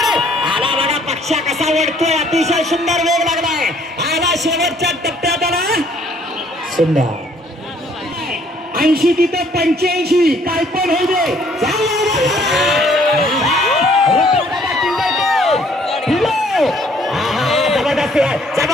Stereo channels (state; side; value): normal; both; correlation 0.62